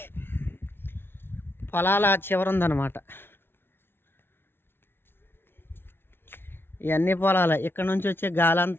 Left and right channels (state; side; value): late; right; 0.11 ms